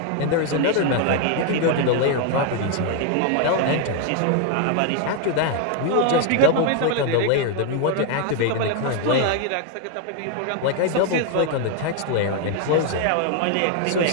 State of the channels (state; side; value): different; both; correlation 0.01